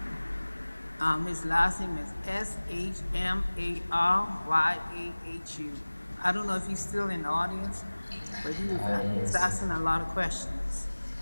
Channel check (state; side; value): inverted; both; correlation -1.00